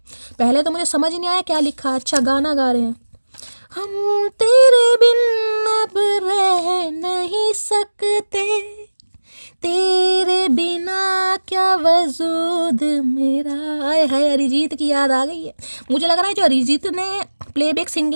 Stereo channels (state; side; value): inverted; both; correlation -1.00